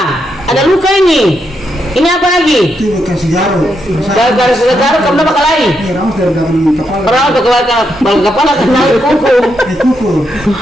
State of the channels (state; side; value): normal; both; correlation 0.81